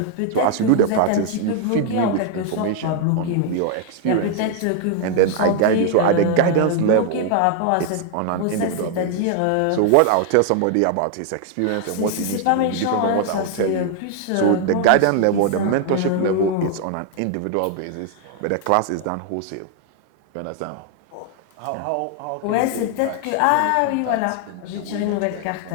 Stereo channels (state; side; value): different; both; correlation 0.00